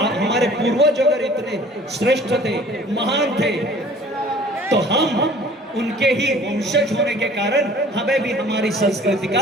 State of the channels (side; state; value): both; normal; correlation 0.50